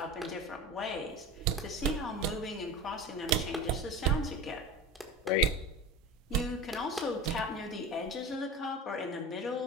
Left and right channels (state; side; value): normal; both; correlation 0.32